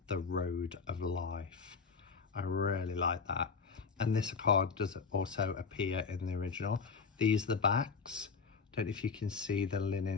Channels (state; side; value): quieter; right; 5.2 dB